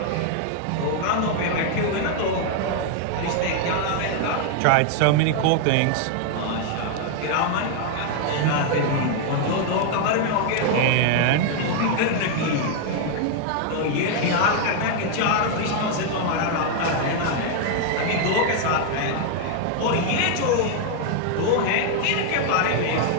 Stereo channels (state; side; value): different; both; correlation 0.00